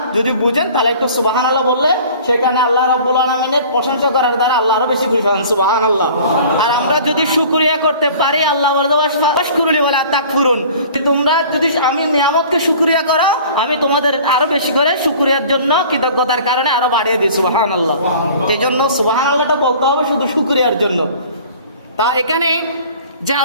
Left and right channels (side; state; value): both; inverted; correlation -0.46